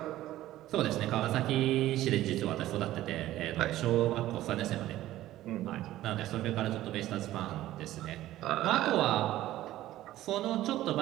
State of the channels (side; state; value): left; quieter; 14.6 dB